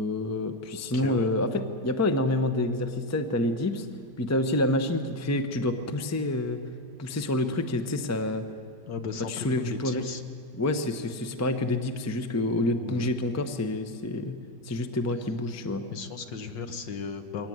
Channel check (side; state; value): both; normal; correlation 0.11